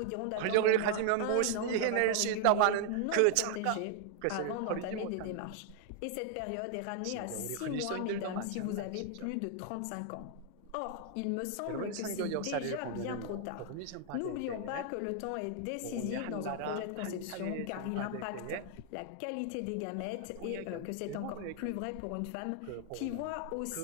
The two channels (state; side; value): different; both; correlation 0.00